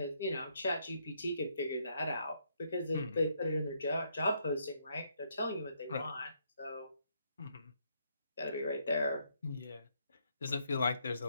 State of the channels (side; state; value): both; inverted; correlation -0.73